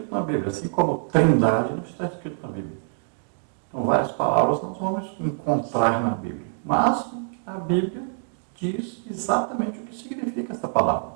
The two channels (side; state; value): left; silent; digital silence